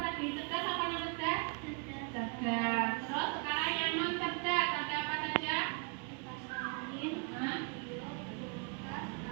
Cerdas apa non cerdas? Cerdas. Terus sekarang yang non cerdas ada apa saja?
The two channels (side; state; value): left; quieter; 37.5 dB